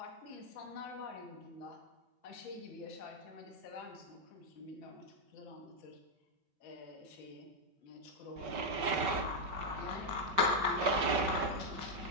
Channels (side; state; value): left; late; 5.3 ms